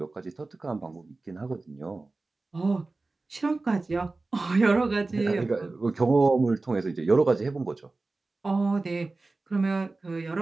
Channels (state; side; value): quieter; left; 3.4 dB